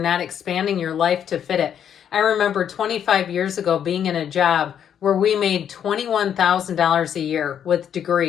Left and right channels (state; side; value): quieter; right; 8.9 dB